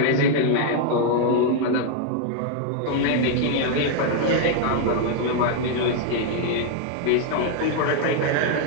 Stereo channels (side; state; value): both; different; correlation 0.00